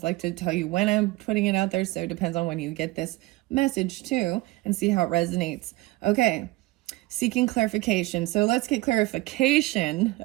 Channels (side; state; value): left; quieter; 19.6 dB